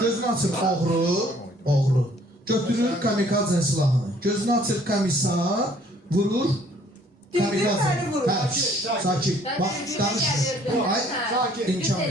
açır oğru. Götürür kamikazın silahını. Gözünü açır komissar, vurur. Sakin. Bax, danışmır. Ay, imkan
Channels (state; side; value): normal; both; correlation 0.60